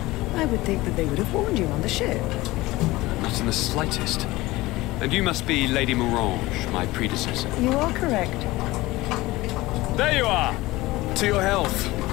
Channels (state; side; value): quieter; right; 18.8 dB